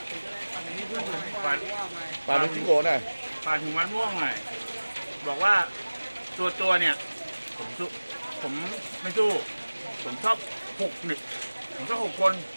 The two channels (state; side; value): inverted; both; correlation -1.00